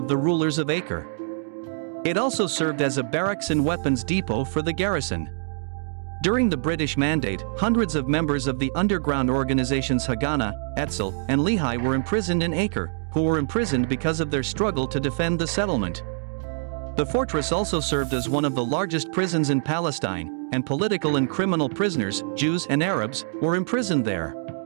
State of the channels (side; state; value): left; silent; digital silence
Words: the rulers of Acre. It also served as a barracks and weapons depot for the garrison. During the British Mandate, hundreds of members of the underground organizations Haganah, Etzel, and Lehi were imprisoned in Acre, who were imprisoned because of their struggle to defend the settlement. The fortress also served as one of the largest prisons in Palestine, and political and criminal prisoners, Jews and Arabs, were imprisoned there.